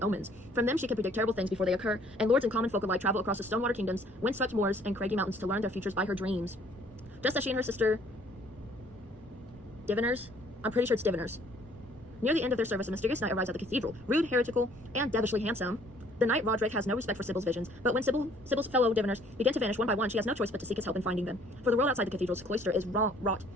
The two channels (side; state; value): both; normal; correlation 0.59